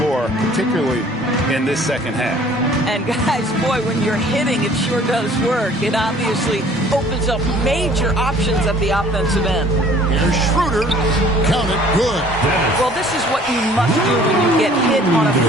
particularly in this second half. And guys, boy, when you're hitting, it sure does work. It obviously opens up major options at the offensive end. Here's Schroeder. Count it. Good. Well, this is what you must do when you get hit on a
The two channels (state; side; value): normal; both; correlation 0.54